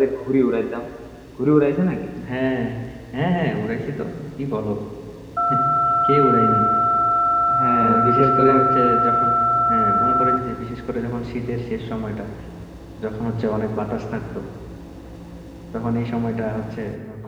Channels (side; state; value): both; identical; correlation 1.00